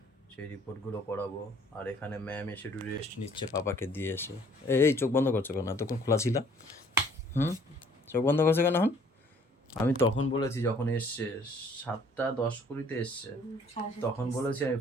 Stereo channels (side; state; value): both; normal; correlation 0.58